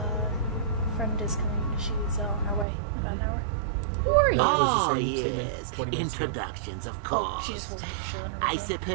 friend is coming. She's on her way. About an hour. Who are you? Oh, yes. Introductions, of course. Oh, she just wasn't sure. I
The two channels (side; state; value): left; drops out; at 2.7 s